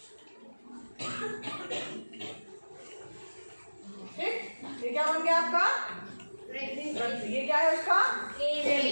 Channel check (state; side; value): inverted; both; correlation -1.00